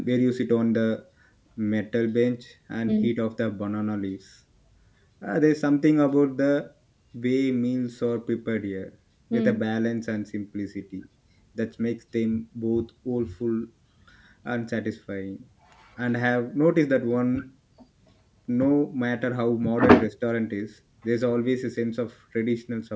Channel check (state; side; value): identical; both; correlation 1.00